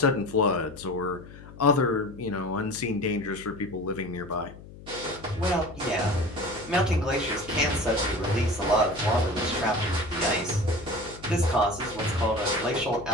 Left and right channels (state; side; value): noise; left; hum, 17 dB below the sound